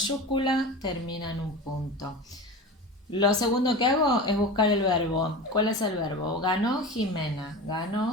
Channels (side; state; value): both; normal; correlation 0.30